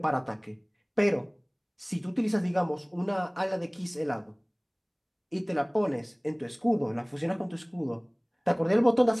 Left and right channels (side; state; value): both; identical; correlation 1.00